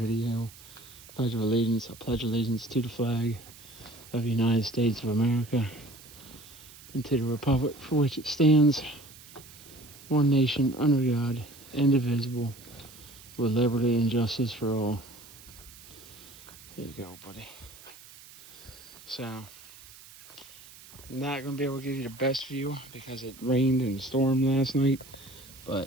Pledge of allegiance. I pledge allegiance to the flag of the United States of America and to the republic for which it stands, one nation under God, indivisible, with liberty and justice for all. Here you go, buddy. So, I'm not going to be able to give you the best view because it rained and stormed last night,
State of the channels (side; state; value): right; noise; hiss, 20 dB below the sound